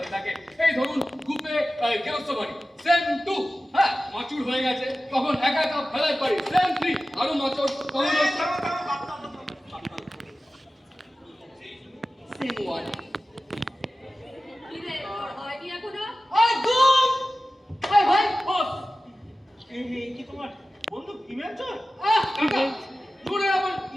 থাকে। এই ধরুন গ্রুপে গৃহস্থ বাড়ি সেম টু, হ্যাঁ মাচুর হয়ে গেছে তখন একা একা ফেলাই পারি সেম থ্রি, আরো নচর তখন এই, থামো, থামো, বাদ দাও, বাদ দাও, বাদ দাও। Same one. কিরে হয়নি এখনো? আই গুড হাই ভাই বস। এই কি তোমার বন্ধু ফিমেল চোর? কাকা জোরে আবার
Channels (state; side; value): normal; both; correlation 0.95